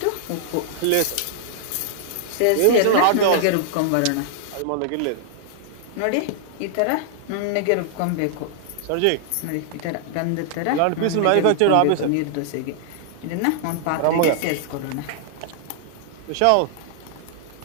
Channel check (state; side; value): different; both; correlation -0.01